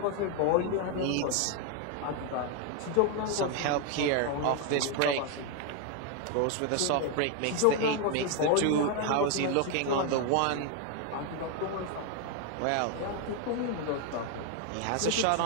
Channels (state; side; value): different; both; correlation 0.01